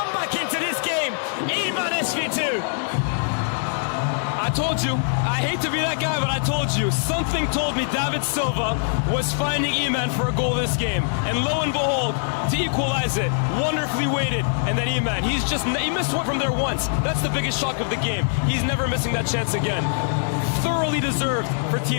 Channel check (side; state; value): right; silent; digital silence